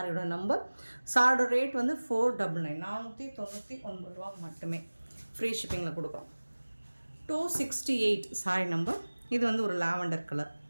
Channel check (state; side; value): inverted; both; correlation -1.00